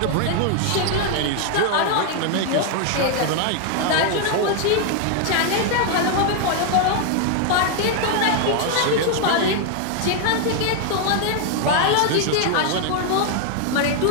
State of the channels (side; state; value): both; different; correlation 0.00